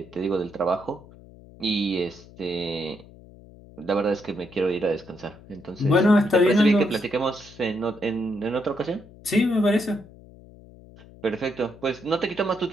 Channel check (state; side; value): noise; left; hum, 21 dB below the sound